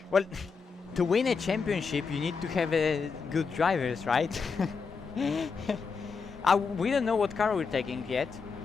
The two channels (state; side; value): quieter; right; 5.2 dB